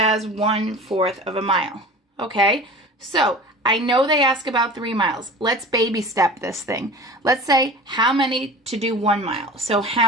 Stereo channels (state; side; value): normal; both; correlation 0.38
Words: 1/4 of a mile. Okay? So I know they ask about 3 miles. Let's baby step this thing. Let's say how many to do 1 mile. So